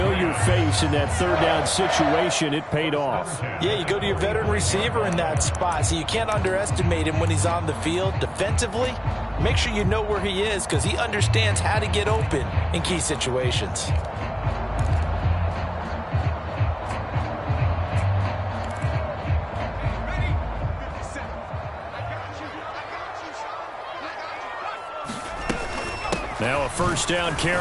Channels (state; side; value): identical; both; correlation 1.00